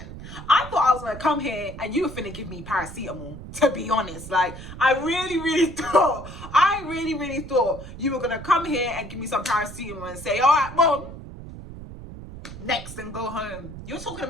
I thought I was going to come here and you were finna give me paracetamol, to be honest. Like, I really thought you were going to come here and give me some paracetamol and say, all right, Mom, next and go home. You're talking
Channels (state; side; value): noise; right; rumble, 12 dB below the sound